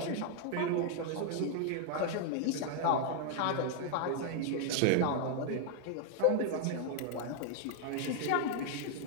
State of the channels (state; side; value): different; both; correlation 0.00